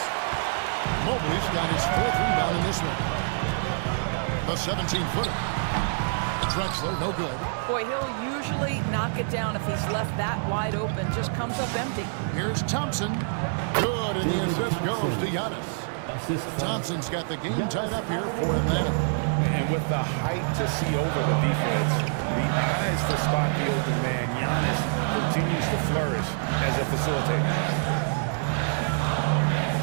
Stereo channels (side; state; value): left; silent; digital silence